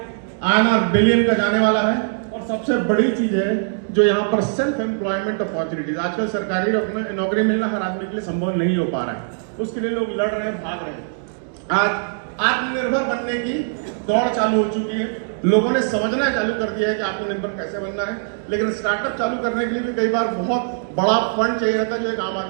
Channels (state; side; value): silent; left; digital silence